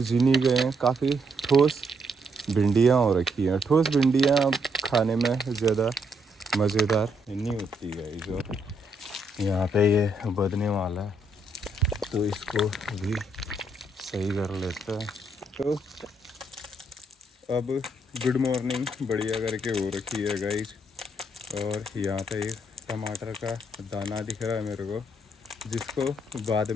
जिनी गए हैं। काफ़ी ठोस भिंडियाँ हो रखी हैं। ठोस भिंडियाँ खाने में ज़्यादा मज़ेदार नहीं होती है। जो यहाँ पे ये बदने वाला है तो इसको भी सही कर लेते हैं। तो अब गुड मॉर्निंग बढ़िया करके हो रखी है गाइस। और यहाँ पे एक टमाटर का दाना दिख रहा है मेरे को, जिसको बाद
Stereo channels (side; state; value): both; normal; correlation 0.75